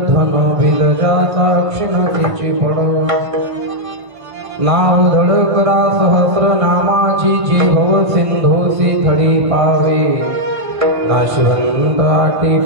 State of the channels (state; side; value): late; left; 1.5 ms